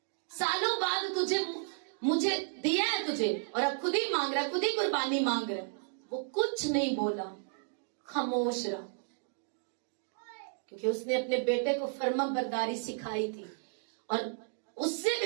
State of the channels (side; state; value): left; silent; 56 dB below the other